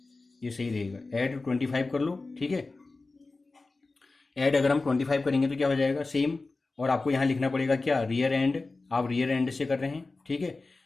ये सही रहेगा। ऐड 25 कर लो, ठीक है। ऐड अगर हम 25 करेंगे तो क्या हो जाएगा? सेम। और आपको यहां लिखना पड़ेगा क्या? Rear and. आप रियर एंड से कर रहे हैं, ठीक है।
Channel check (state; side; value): quieter; right; 3.5 dB